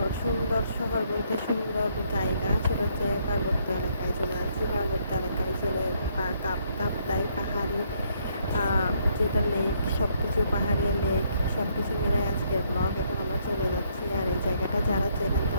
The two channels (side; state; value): both; inverted; correlation -0.70